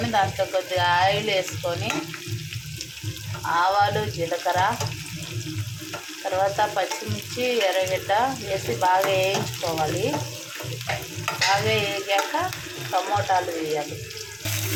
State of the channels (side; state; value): both; identical; correlation 1.00